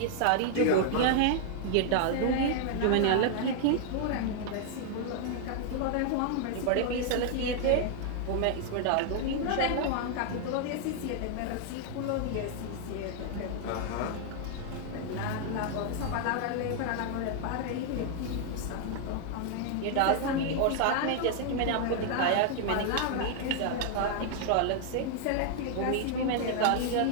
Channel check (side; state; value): both; different; correlation 0.00